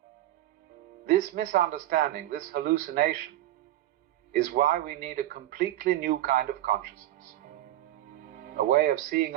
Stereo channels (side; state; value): left; quieter; 14.3 dB